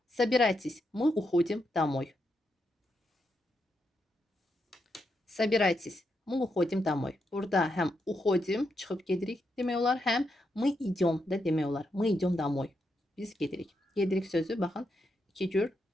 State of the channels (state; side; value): normal; both; correlation 0.82